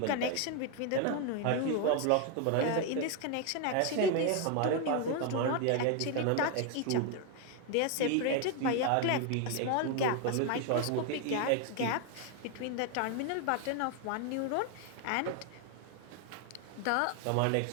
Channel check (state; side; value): different; both; correlation 0.01